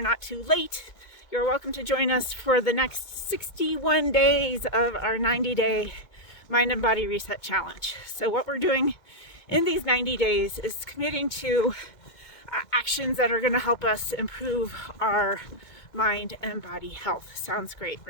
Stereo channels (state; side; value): late; right; 2.2 ms